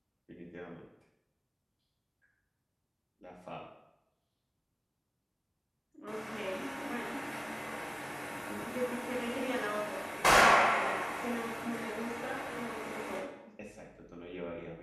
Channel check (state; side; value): identical; both; correlation 1.00